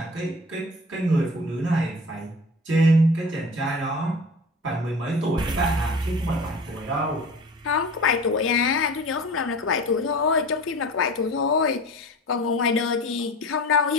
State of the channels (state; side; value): normal; both; correlation 0.38